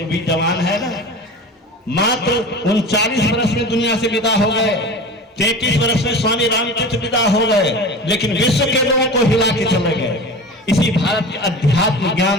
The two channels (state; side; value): normal; both; correlation 0.34